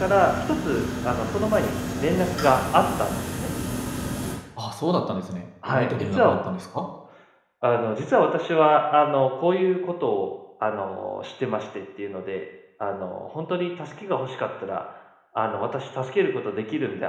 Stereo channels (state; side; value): identical; both; correlation 1.00